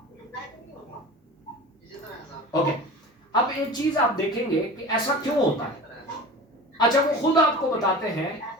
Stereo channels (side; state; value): both; normal; correlation 0.35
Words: ओके, अब एक चीज आप देखेंगे कि ऐसा क्यों होता है। अच्छा, वो खुद आपको बताते हैं